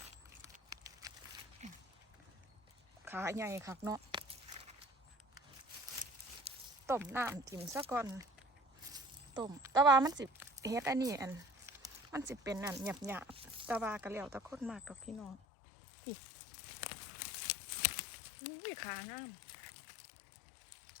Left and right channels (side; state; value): right; drops out; at 15.4 s